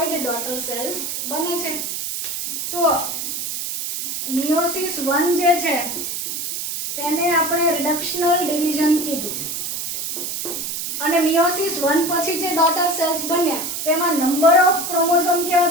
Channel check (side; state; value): right; noise; hiss, 4 dB below the sound